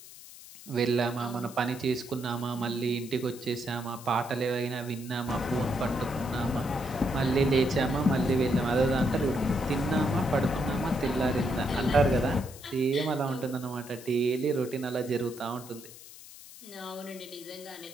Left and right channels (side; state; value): left; noise; hiss, 17 dB below the sound